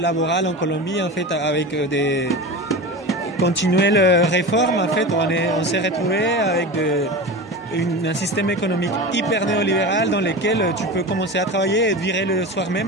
en Colombie, en fait, avec des continuelles réformes. En fait, on s'est retrouvé avec un système économique hyper néolibéral dans lequel tu peux commencer à travailler et te virer le soir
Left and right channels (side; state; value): both; normal; correlation 0.28